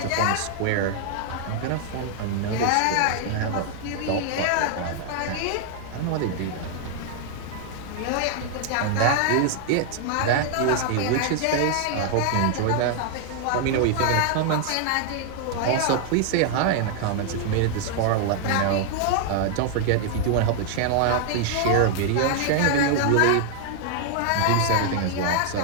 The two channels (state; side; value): different; both; correlation 0.00